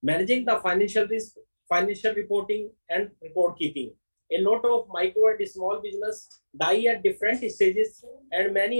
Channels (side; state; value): both; inverted; correlation -1.00